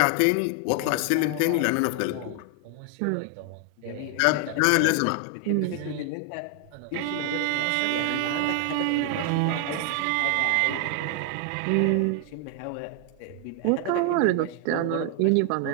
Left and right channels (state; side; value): different; both; correlation 0.00